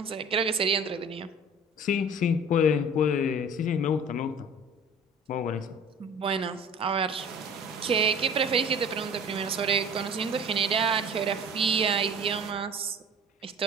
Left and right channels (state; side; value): normal; both; correlation 0.43